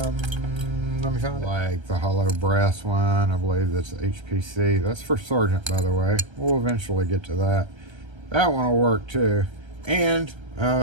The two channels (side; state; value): left; late; 1.3 ms